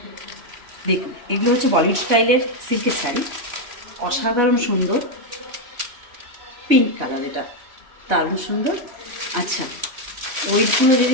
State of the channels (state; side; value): late; left; 3.0 ms